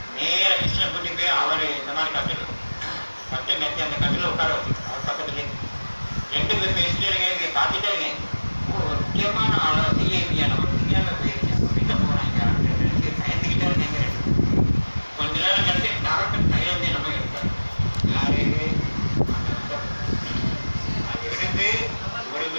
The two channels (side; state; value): both; inverted; correlation -1.00